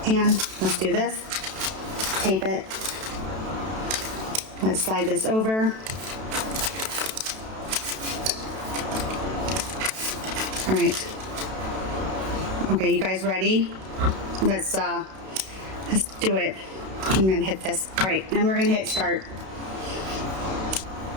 and let's do this. Tape it. Let's slide this over. All right. Okay, you guys ready? Let's do it. I'm gonna hit this. All right, and we're gonna hit start.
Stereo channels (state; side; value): late; left; 32 ms